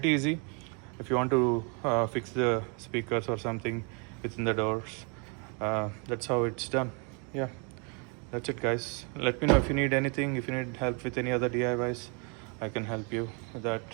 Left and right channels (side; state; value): left; quieter; 35.8 dB